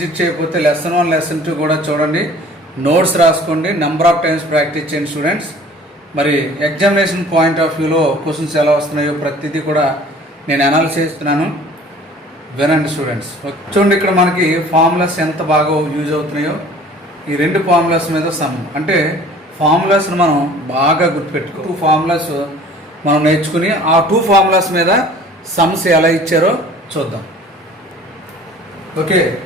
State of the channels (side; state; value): both; normal; correlation 0.48